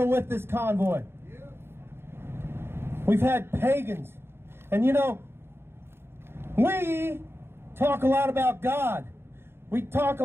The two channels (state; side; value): late; left; 0.11 ms